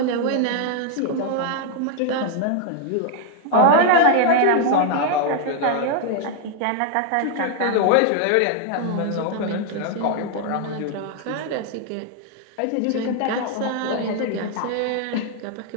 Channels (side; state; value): both; different; correlation 0.00